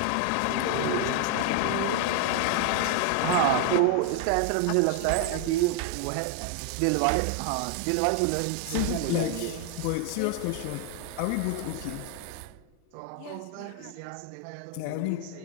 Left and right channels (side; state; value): both; different; correlation 0.00